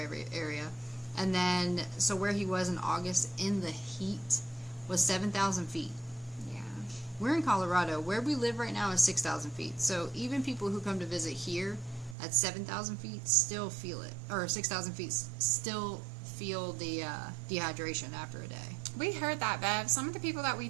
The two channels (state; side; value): drops out; left; at 12.2 s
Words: And then, so where he was in August in the heat was 7,000 feet. We're in Colorado. Where we live right now is 6,000 feet. So even people who come to visit here at 7,000 feet still feel it. Or 6,000 feet still feel the dehydration after a day. We heard that, Bev. Some of the people that we